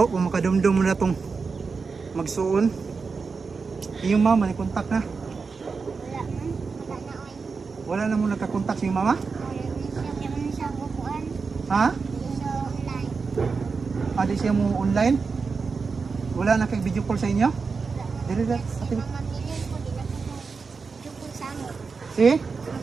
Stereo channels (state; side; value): quieter; left; 4.8 dB